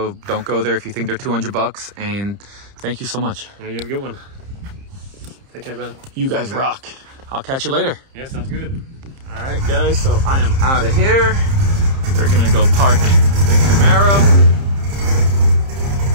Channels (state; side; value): late; left; 30 ms